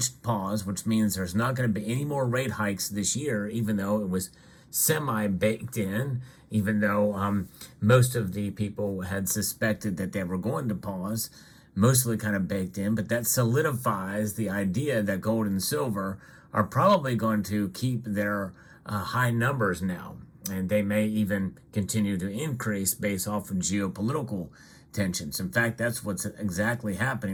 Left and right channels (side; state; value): both; identical; correlation 1.00